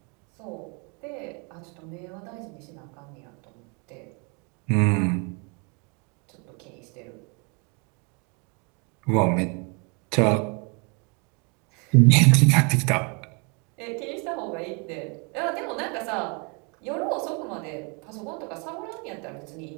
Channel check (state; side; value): quieter; left; 34.0 dB